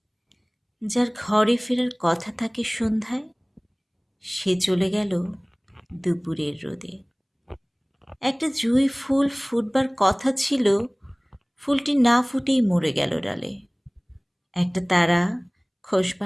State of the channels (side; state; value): both; identical; correlation 1.00